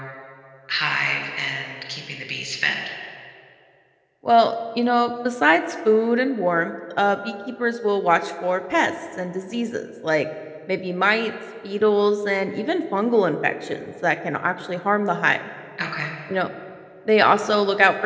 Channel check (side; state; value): both; identical; correlation 1.00